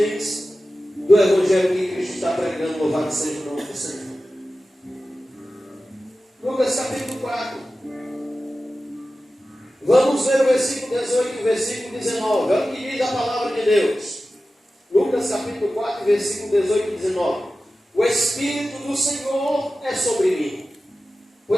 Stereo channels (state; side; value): normal; both; correlation 0.95